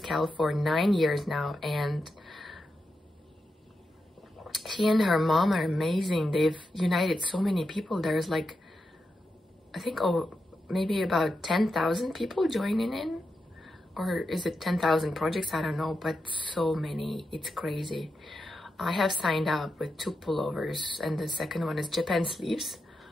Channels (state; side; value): normal; both; correlation 0.87